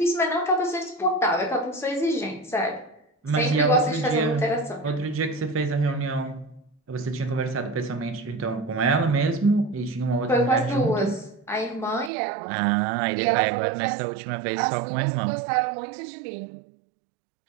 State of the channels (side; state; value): left; drops out; at 12.1 s